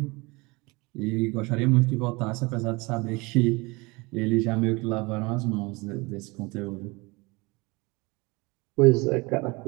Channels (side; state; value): left; quieter; 25.2 dB